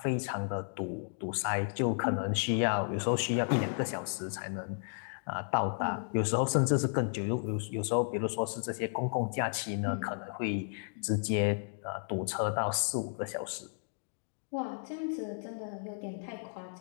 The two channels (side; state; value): right; silent; digital silence